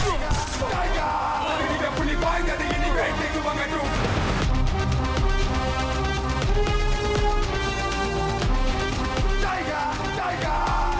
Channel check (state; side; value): identical; both; correlation 1.00